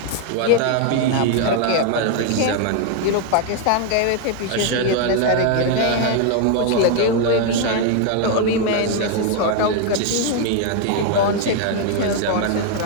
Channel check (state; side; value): different; both; correlation 0.00